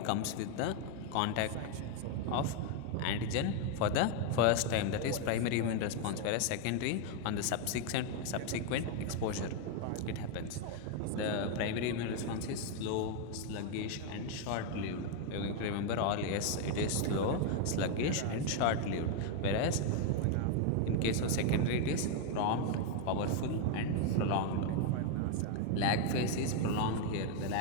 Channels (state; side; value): different; both; correlation 0.01